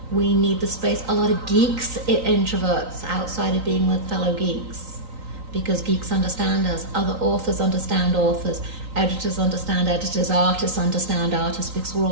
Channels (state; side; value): late; left; 3.9 ms